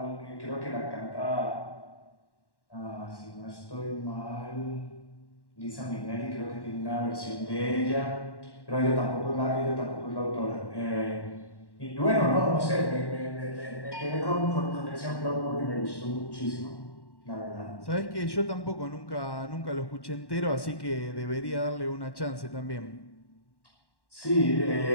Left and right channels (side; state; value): right; late; 1.1 ms